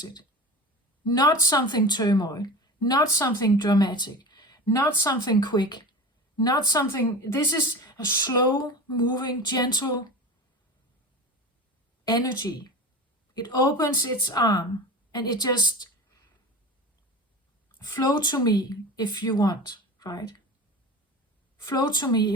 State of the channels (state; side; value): normal; both; correlation 0.32